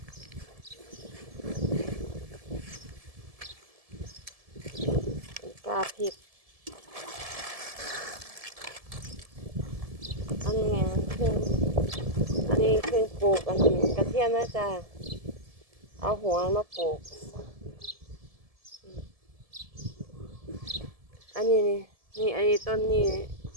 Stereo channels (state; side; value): late; left; 1.7 ms